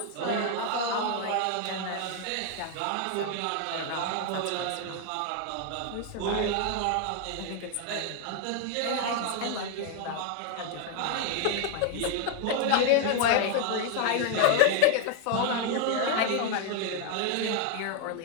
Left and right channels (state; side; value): different; both; correlation 0.01